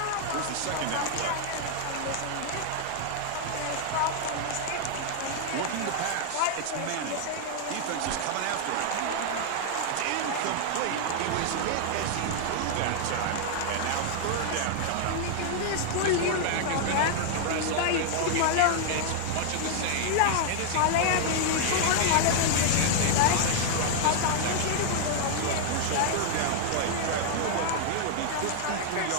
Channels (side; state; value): both; different; correlation 0.00